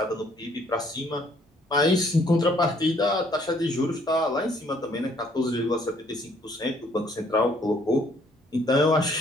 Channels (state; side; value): normal; both; correlation 0.64